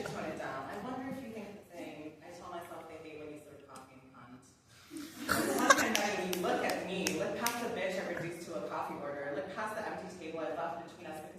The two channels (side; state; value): both; identical; correlation 1.00